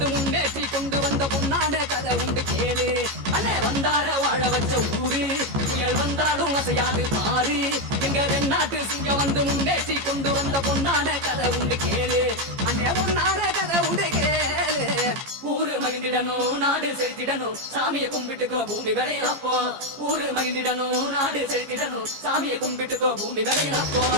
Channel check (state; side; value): late; left; 15 ms